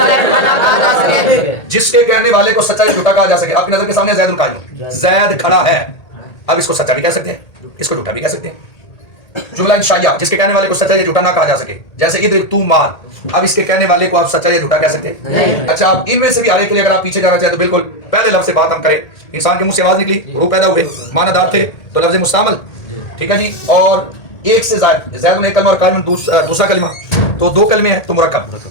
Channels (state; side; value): late; right; 1.8 ms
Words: یا جھوٹا نہ کہا جا سکے. جس کے کہنے والے کو سچا یا جھوٹا کہا جا سکے. آپ کی نظر کے سامنے زید القائم، زید کھڑا ہے. اب اس کو سچا بھی کہہ سکتے ہیں، اس کو جھوٹا بھی کہہ سکتے ہیں. جملہ انشائیہ جس کے کہنے والے کو سچا یا جھوٹا نہ کہا جا سکے. جیسے ادھر تو مال، اب اس کے کہنے والے کو آپ سچا یا جھوٹا کہہ سکتے ہیں. اچھا اب ان میں سے بھی ہر ایک کے لیے اگر آپ پیچھے جانا چاہیں تو بالکل پہلے لفظ سے بات ہم کریں. انسان کے منہ سے آواز نکلی، روح پیدا ہوئے، معنی دار تھے تو لفظ مستعمل. ٹھیک ہے جی. اور ایک سے زائد، زید ایک کلمہ اور قائم دوسرا کلمہ، تو دو کلمے ہیں تو مرکب.